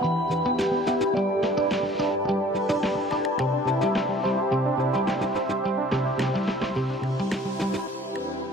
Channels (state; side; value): normal; both; correlation 0.53